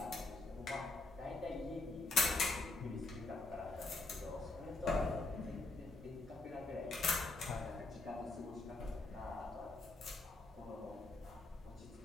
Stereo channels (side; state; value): right; quieter; 3.3 dB